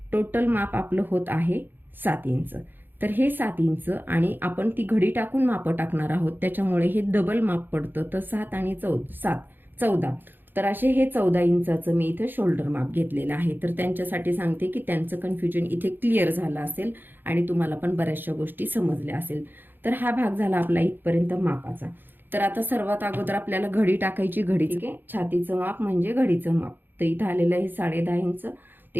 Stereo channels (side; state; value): left; late; 0.094 ms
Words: टोटल माप आपलं होत आहे 7 इंच. तर हे 7 इंच आणि आपण ती घडी टाकून माप टाकणार आहोत, त्याच्यामुळे हे डबल माप पडतं. तर 7 आणि 14. तर असे हे 14 इंचाचं मी इथे शोल्डर माप घेतलेलं आहे. तर त्यांच्यासाठी सांगते की त्यांचं कन्फ्युजन इथे क्लिअर झालं असेल आणि तुम्हाला पण बऱ्याचशा गोष्टी समजल्या असेल. तर हा भाग झाला आपला इथपर्यंत मापाचा. तर आता सर्वात अगोदर आपल्याला घडी टाकायची. घडी, ठीक आहे, छातीचं माप म्हणजे घडीचं माप. तर इथं आलेलं आहे 10.5 इंच.